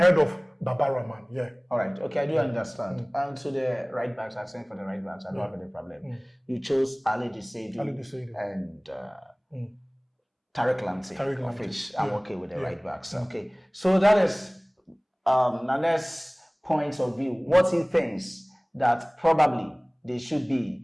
of Baba Rahman. Yeah. All right. Okay, I do understand. And to the right backs, I'm saying for the right backs, I don't have any problem. You chose Ali Dissedu and Tariq Lamptey, of which I'm okay with the right backs. Okay. So that is Nane's point of view. What he thinks that probably they should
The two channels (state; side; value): identical; both; correlation 1.00